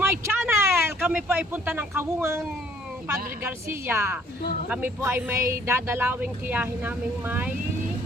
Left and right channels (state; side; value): normal; both; correlation 0.59